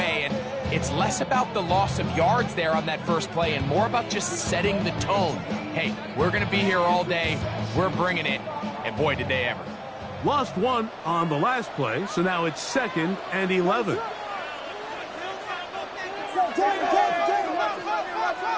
And it's less about the loss of yards there on that first play and more about just setting the tone. Hey, we're going to be here all day. We're bringing it. And boy, did they ever. Lost one on the last play, so now it's 2nd and 11.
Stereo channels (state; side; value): identical; both; correlation 1.00